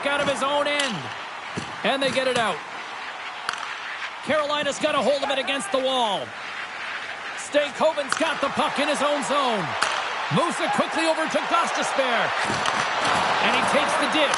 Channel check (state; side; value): identical; both; correlation 1.00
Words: out of his own end. And they get it out. Carolina's got a hold of it against the wall. Stankoven's got the puck in his own zone. Moves it quickly over to Gostisbehere. And he takes the